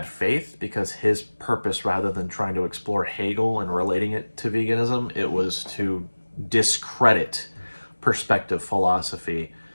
faith, because his purpose, rather than trying to explore Hegel and relating it to veganism, it was to discredit Perspective Philosophy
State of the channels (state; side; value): inverted; both; correlation -1.00